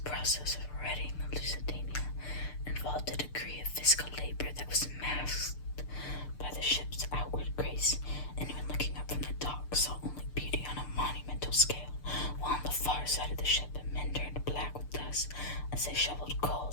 process of righting the Lusitania involved a degree of physical labor that was masked by the ship's outward grace. Anyone looking up from the dock saw only beauty on a monumental scale, while on the far side of the ship men turned black with dust as they shoveled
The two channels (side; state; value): right; late; 6.7 ms